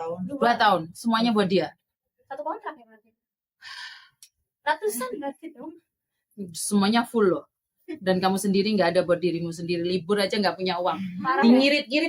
2 tahun. Semuanya buat dia. Satu kontrak ya berarti. Ratusan berarti dong. Semuanya full loh. Dan kamu sendiri nggak ada buat dirimu sendiri. Libur aja nggak punya uang. Parah ya.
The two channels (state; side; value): identical; both; correlation 1.00